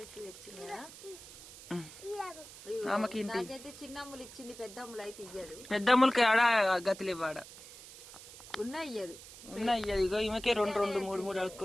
తెచ్చింది కదా, నాకైతే చిన్న అమ్ములు ఇచ్చింది, పెద్ద అమ్ములు అయితే ఇయ్యదు. పెద్ద అమ్ములకి ఆడ గతులు ఇవ్వడ ఉన్నా ఇయ్యదు, ఉన్నా ఇయ్యదు. ఇగో ఈమెకే రెండు రెండు మూడు మూడు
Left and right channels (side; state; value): right; noise; hiss, 16 dB below the sound